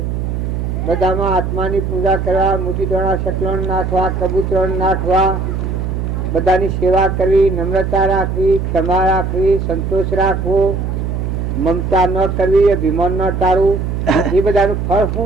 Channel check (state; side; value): noise; right; hum, 2 dB below the sound